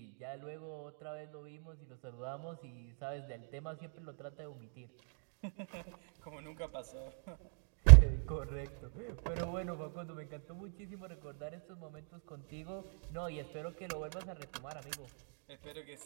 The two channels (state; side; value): silent; left; 52 dB below the other